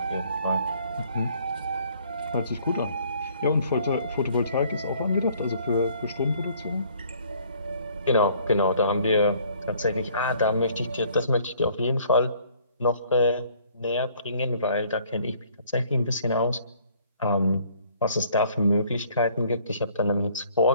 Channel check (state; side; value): inverted; both; correlation -0.60